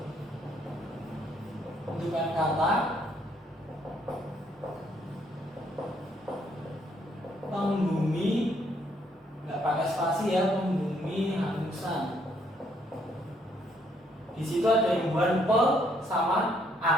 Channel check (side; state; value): both; normal; correlation 0.69